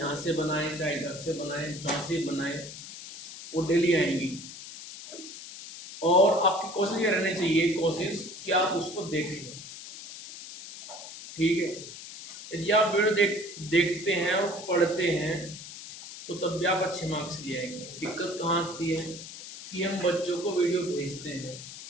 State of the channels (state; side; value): noise; left; hiss, 12 dB below the sound